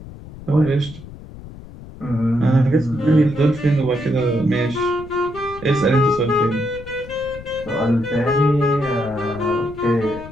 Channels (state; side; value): noise; left; rumble, 16 dB below the sound